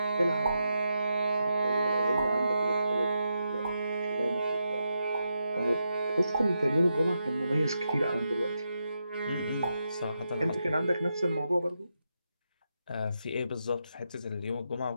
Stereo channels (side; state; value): both; inverted; correlation -0.85